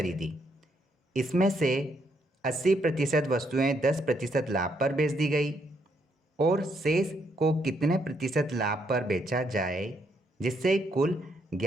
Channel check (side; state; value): both; normal; correlation 0.75